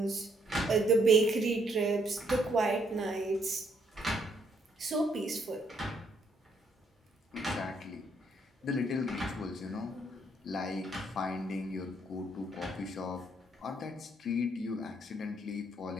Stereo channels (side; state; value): both; normal; correlation 0.70